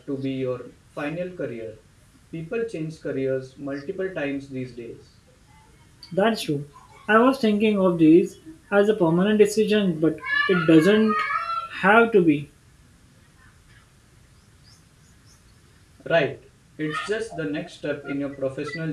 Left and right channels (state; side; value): identical; both; correlation 1.00